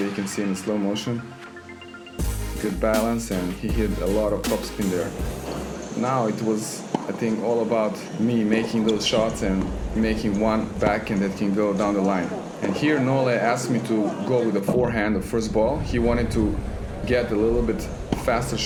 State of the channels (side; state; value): both; identical; correlation 1.00